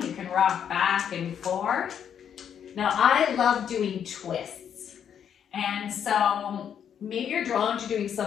You can rock back and forth. Now, I love doing twists. And so maybe you're drawn to doing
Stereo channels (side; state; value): right; quieter; 8.6 dB